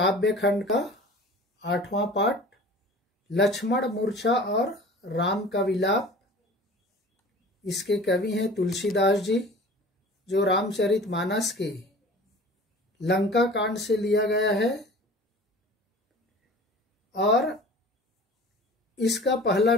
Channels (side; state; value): both; normal; correlation 0.42